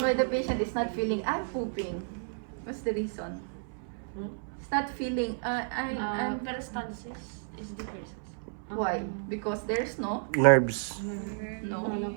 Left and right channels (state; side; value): silent; left; 57 dB below the other